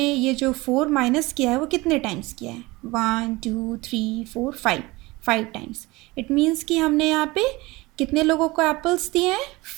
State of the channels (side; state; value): left; quieter; 21.8 dB